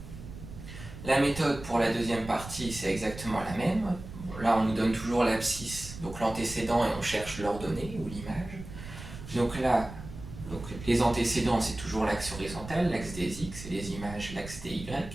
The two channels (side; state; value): right; noise; rumble, 12 dB below the sound